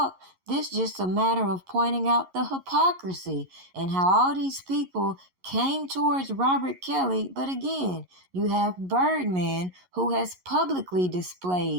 This just a matter of pointing out the hypocrisy and how all these people came towards Robert Kelly. But again, you have Birdman, who has publicly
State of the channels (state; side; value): late; left; 11 ms